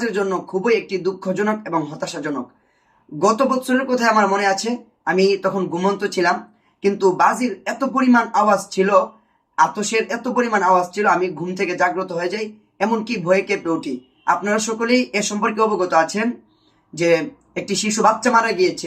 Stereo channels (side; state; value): both; identical; correlation 1.00